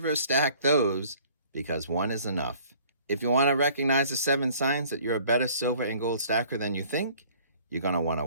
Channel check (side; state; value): both; inverted; correlation -0.55